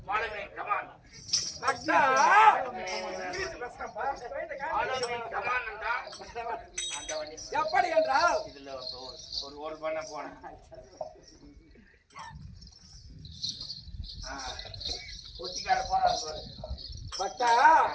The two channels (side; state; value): both; identical; correlation 1.00